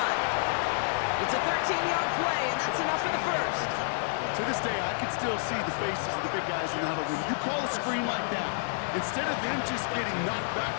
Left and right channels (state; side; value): silent; right; digital silence